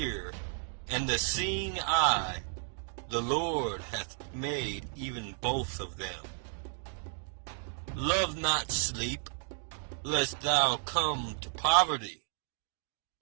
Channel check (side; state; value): left; silent; digital silence